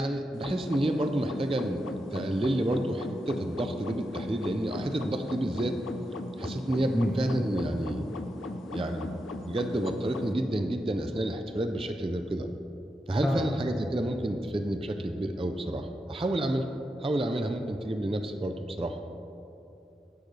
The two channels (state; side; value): normal; both; correlation 0.86